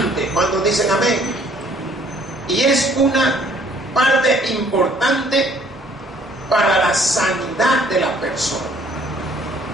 Cuando dicen amén. Y es una parte importante para la sanidad de la persona.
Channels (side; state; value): both; normal; correlation 0.60